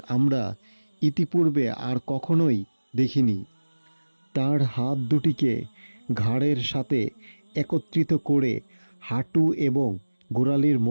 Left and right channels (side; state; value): both; inverted; correlation -1.00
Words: আমরা ইতিপূর্বে আর কখনোই দেখিনি। তার হাত দুটিকে ঘাড়ের সাথে একত্রিত করে হাঁটু এবং গোড়ালির